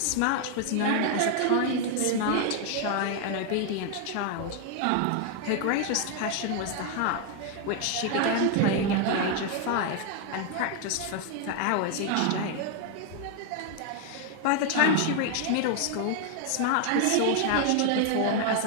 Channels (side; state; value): both; different; correlation 0.01